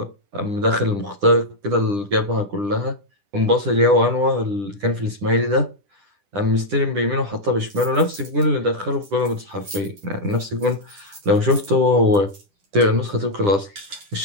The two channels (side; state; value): left; late; 10 ms